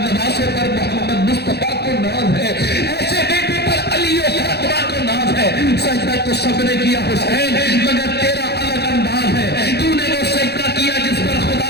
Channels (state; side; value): late; right; 0.48 ms